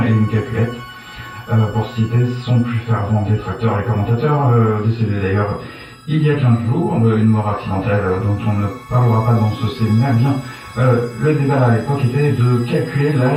et une calculette. Pour citer son plus fervent détracteur et commentateur, décédé d'ailleurs Il y a 15 jours, une mort accidentelle dont on ne parlera pas dans ce séminaire, bien, le débat à l'époque était de calculer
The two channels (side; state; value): both; identical; correlation 1.00